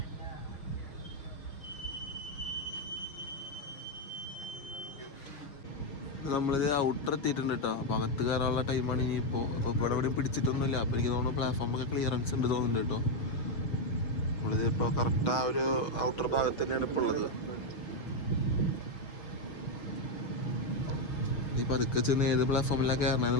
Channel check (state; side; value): late; right; 6.6 ms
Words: നമ്മളിത് ഔട്ടർ എത്തിയിട്ടുണ്ട് കേട്ടോ. അപ്പോൾ അകത്ത് കയറാനുള്ള ടൈമാണ് ഇനിയിപ്പോൾ. ഇപ്പോൾ ഇവിടെ എവിടെയും പിടിച്ചിട്ടൊന്നുമില്ല. അപ്പോൾ എനിക്ക് തോന്നുന്നു പ്ലാറ്റ്ഫോമൊക്കെ ക്ലിയറൻസ് ഉണ്ട് തോന്നുന്നുണ്ട് കേട്ടോ. നമ്മളിത് ഇപ്പോൾ കറക്റ്റ് ആ ഒരു ഔട്ടർ ഭാഗത്ത് തന്നെയാണ് ഇപ്പോൾ ഉള്ളത്. ഈ പതുക്കെ ചെന്ന് ഏത് പ്ലാറ്റ്ഫോമിലാണ്